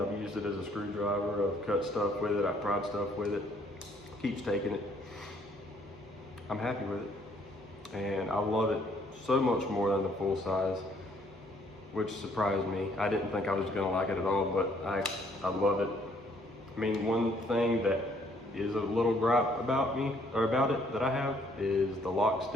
used it as a screwdriver. I've cut stuff with it. I've pried stuff with it. Keeps taking it. I'm happy with it, and I love it so much more than the full size, which surprised me. I didn't think I was gonna like it at all, but I love it. I mean, one thing that is a little gripe about it that I have is the lock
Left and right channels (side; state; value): both; normal; correlation 0.65